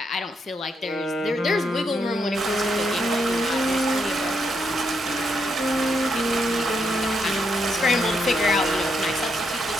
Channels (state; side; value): normal; both; correlation 0.79